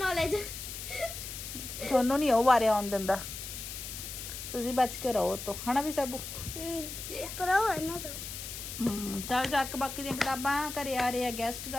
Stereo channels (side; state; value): left; noise; hiss, 8 dB below the sound